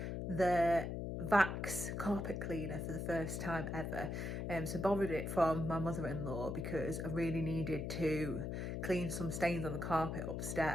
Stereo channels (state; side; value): noise; left; hum, 3 dB below the sound